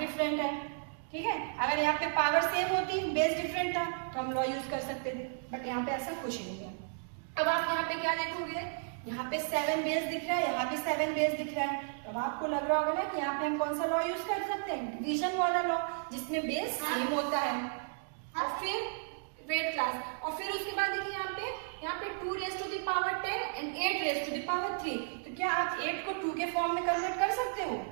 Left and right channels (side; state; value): left; silent; digital silence